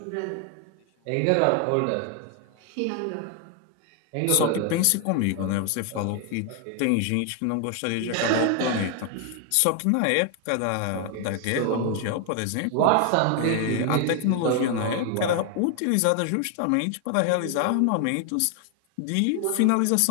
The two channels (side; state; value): both; different; correlation 0.01